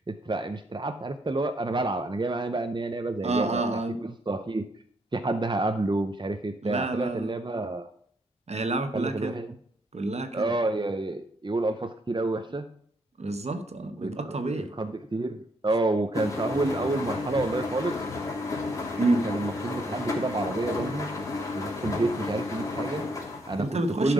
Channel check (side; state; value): both; normal; correlation 0.72